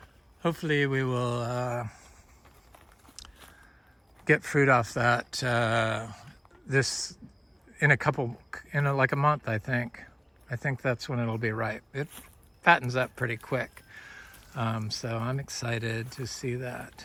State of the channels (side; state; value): both; identical; correlation 1.00